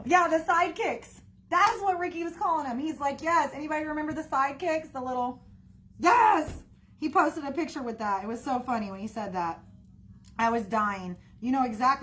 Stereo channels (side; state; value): both; identical; correlation 1.00